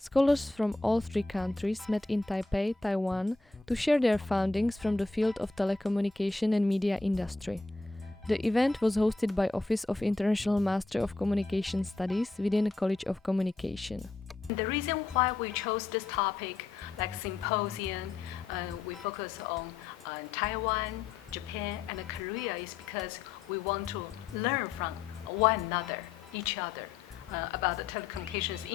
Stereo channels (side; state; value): right; quieter; 3.7 dB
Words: from all three countries met in Taipei, Taiwan, to share their findings from the field of telecommunication and media industry. The event was hosted by Office of International Master of Communication Studies within the College of Communication. The reason why we chose this topic, like symposium, we focus on Taiwan, Japan, and Korea, is because we want to learn from one another, each other, about the telecommunications